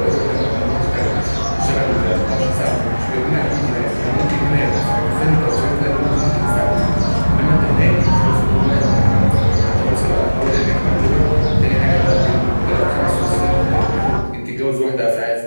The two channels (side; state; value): both; inverted; correlation -1.00